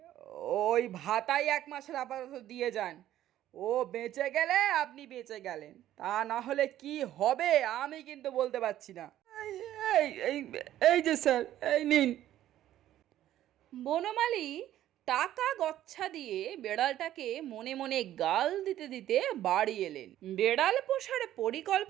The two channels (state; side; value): quieter; left; 12.7 dB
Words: ওই ভাতাই 1 মাসের আপাতত দিয়ে যান। ও বেঁচে গেলে আপনি বেঁচে গেলেন, তা না হলে কি হবে আমি কিন্তু বলতে পারছি না। এই যে স্যার, এই নিন। বনমালী টাকা গচ্ছা দিয়ে বেড়ালটাকে মনে মনে গাল দিতে দিতে বাড়ি এলেন। বেড়াল পোষার